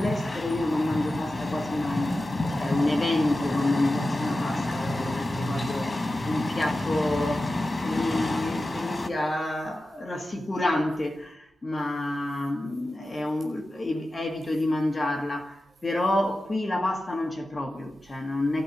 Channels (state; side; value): normal; both; correlation 0.93